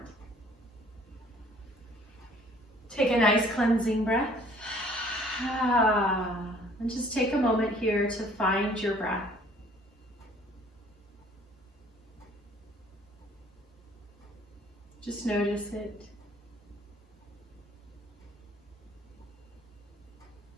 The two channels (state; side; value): normal; both; correlation 0.56